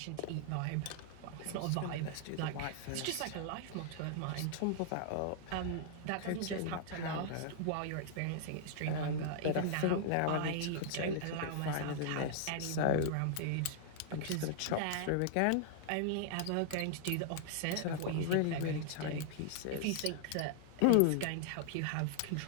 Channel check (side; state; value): both; different; correlation -0.01